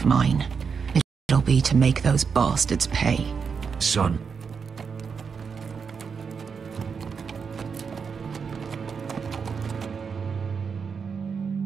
mine, it'll be to make those bastards pay. Son.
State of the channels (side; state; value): left; quieter; 5.9 dB